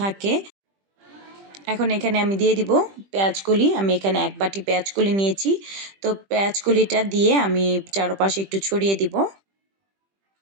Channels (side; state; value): left; late; 20 ms